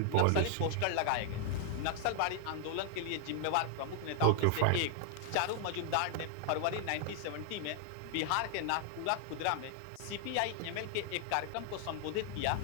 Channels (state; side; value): different; both; correlation 0.00